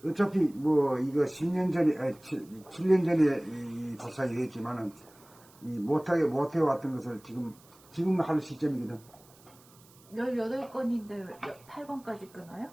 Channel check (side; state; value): right; noise; hiss, 26 dB below the sound